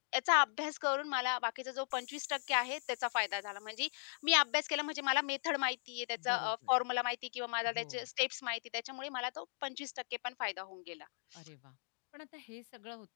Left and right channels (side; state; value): right; silent; digital silence